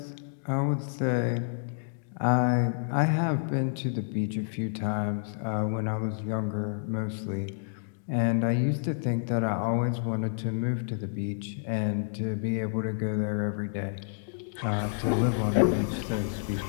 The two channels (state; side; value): silent; right; digital silence